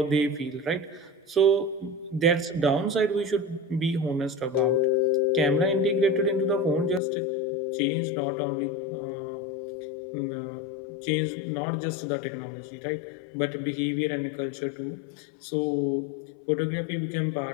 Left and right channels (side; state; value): right; drops out; at 7.0 s